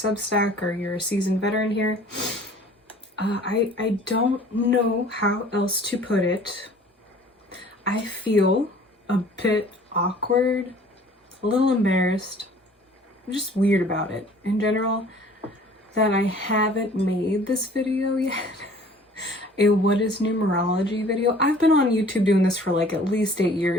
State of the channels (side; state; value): both; normal; correlation 0.51